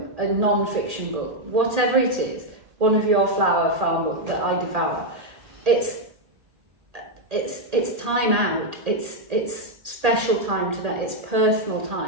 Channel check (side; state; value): left; late; 1.8 ms